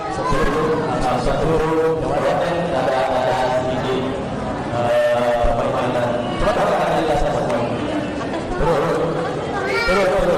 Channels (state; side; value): identical; both; correlation 1.00